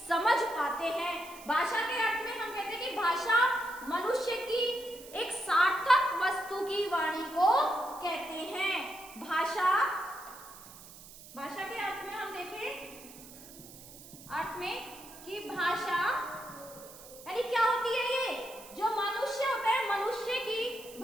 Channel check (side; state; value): right; noise; hiss, 18 dB below the sound